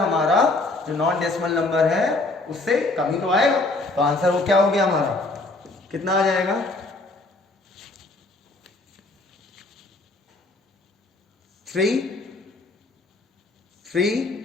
जो नॉन डेसिमल नंबर है उससे कम ही तो आएगा। तो आंसर वो क्या हो गया हमारा, कितना आ जाएगा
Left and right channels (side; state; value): right; quieter; 3.1 dB